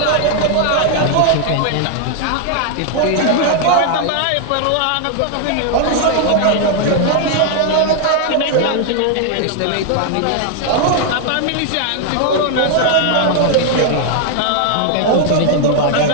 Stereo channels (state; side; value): different; both; correlation 0.00